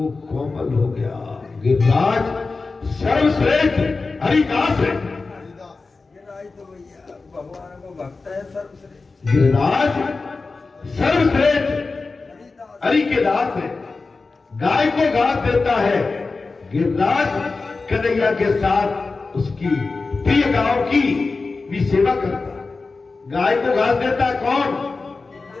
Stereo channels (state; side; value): quieter; right; 3.9 dB